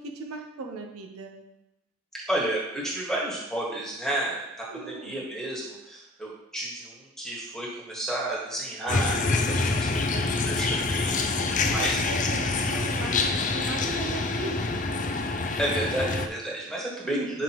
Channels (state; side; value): normal; both; correlation 0.47